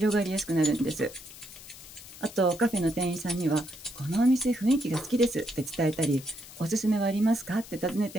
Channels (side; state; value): left; noise; hiss, 17 dB below the sound